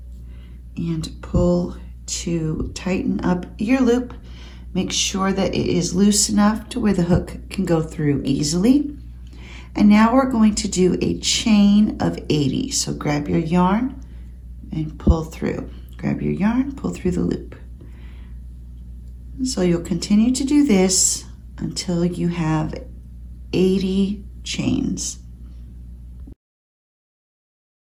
and pull to tighten up your loop. Make sure that it is loose enough to where the hook can go through easily. And now we're going to do a chain of 80. So grab your yarn and pull through. Grab your yarn, pull through the loop. So you'll continue to do this until you have 80 chains.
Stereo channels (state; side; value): identical; both; correlation 1.00